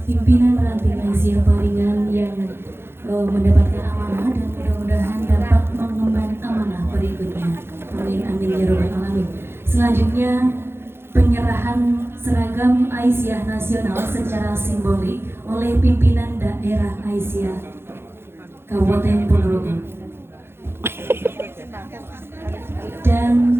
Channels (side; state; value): left; late; 0.11 ms